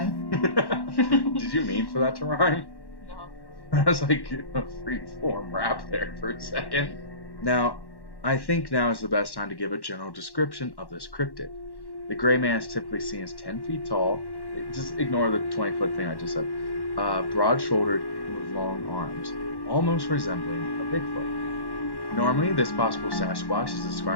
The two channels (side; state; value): right; late; 1.1 ms